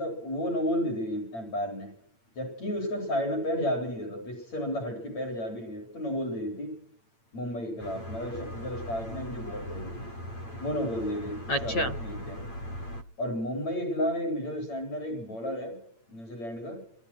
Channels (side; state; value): right; late; 8.8 ms